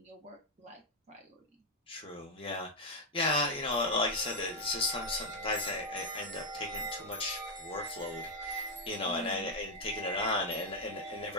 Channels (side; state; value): both; normal; correlation 0.01